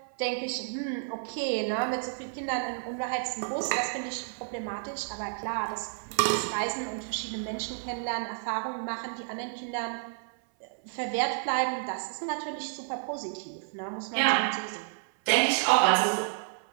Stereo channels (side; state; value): left; silent; 57 dB below the other